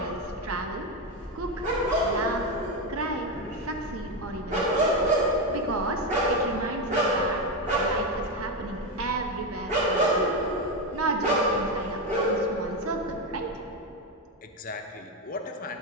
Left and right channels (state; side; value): normal; both; correlation 0.11